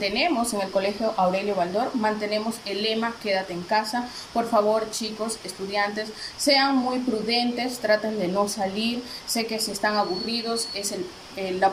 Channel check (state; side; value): identical; both; correlation 1.00